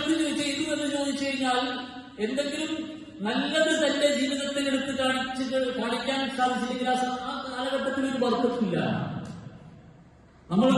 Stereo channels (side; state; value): both; identical; correlation 1.00